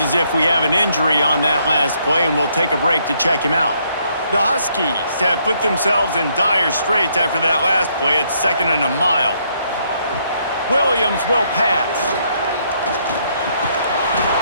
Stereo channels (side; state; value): both; inverted; correlation -0.71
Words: as if we have an injury on that last play, and we'll take a break to check him out. The Huskies have put themselves in dire straits after that last play. It's second and a mile. Williams will pass.